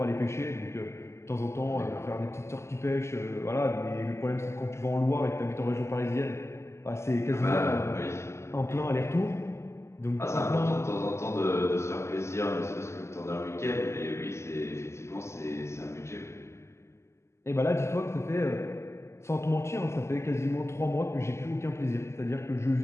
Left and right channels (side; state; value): right; late; 0.13 ms